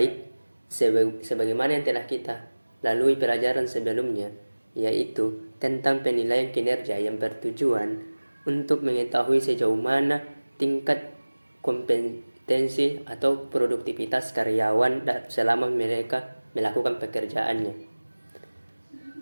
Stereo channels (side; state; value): both; inverted; correlation -1.00